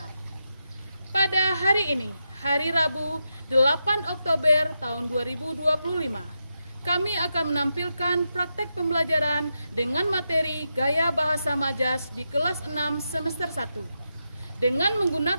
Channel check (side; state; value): both; inverted; correlation -0.86